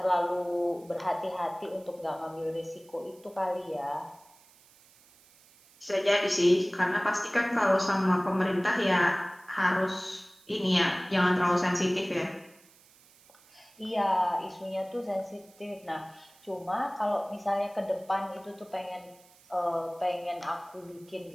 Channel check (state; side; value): noise; right; hiss, 27 dB below the sound